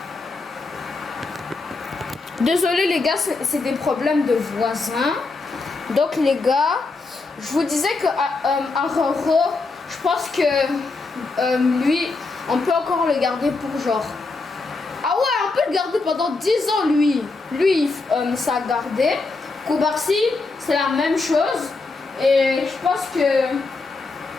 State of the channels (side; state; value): right; quieter; 3.7 dB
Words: désolé les gars, c'est des problèmes de voisins. Donc les gars, je vous disais que Araujo, je pense que lui, on peut encore le garder pour genre. Ah ouais, on peut le garder pendant 10 ans, lui. Lui, ça a gardé. Koubarsi, c'est la même chose. Et je pense que